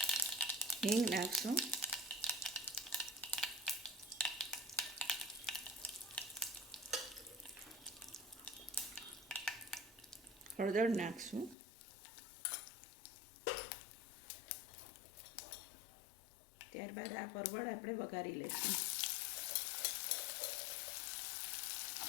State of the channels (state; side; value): drops out; right; at 11.6 s